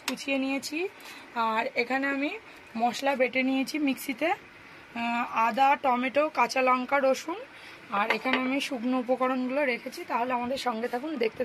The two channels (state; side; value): identical; both; correlation 1.00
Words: কুচিয়ে নিয়েছি, আর এখানে আমি মশলা বেটে নিয়েছি মিক্সিতে, আদা, টমেটো, কাঁচা লঙ্কা, রসুন। আর এখানে আমি শুকনো উপকরণগুলো রেখেছি। তাহলে আমাদের সঙ্গে থাকুন, দেখতে